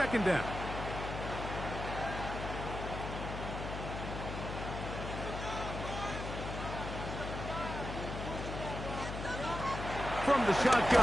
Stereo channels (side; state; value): left; noise; hum, 6 dB below the sound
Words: down. From the